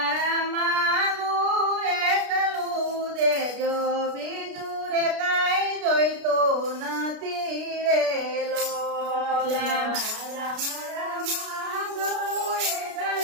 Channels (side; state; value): left; late; 33 ms